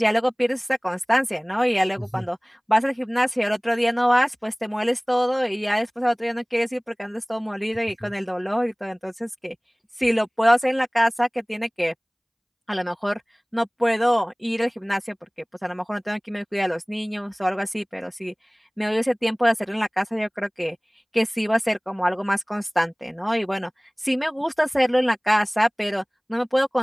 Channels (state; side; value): identical; both; correlation 1.00